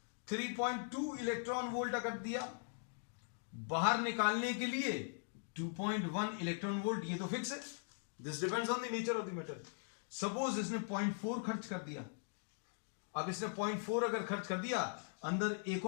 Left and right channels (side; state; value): right; silent; digital silence